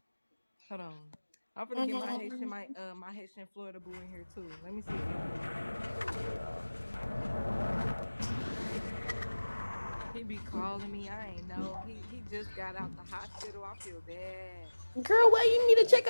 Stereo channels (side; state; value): both; inverted; correlation -1.00